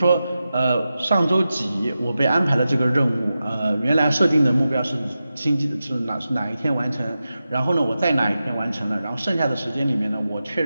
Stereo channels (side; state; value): both; inverted; correlation -0.92